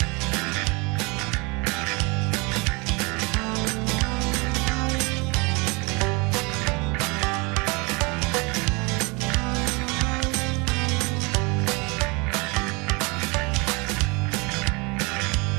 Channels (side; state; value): left; quieter; 28.3 dB